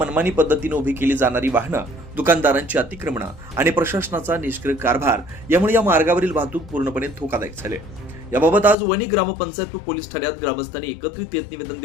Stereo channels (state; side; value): drops out; right; at 8.8 s